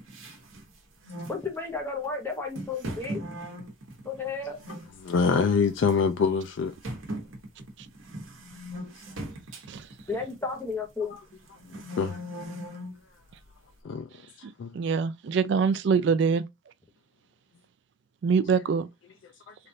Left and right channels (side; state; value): both; normal; correlation 0.32